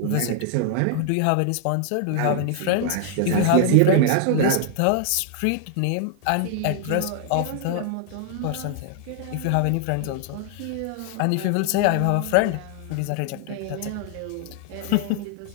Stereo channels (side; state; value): both; different; correlation 0.00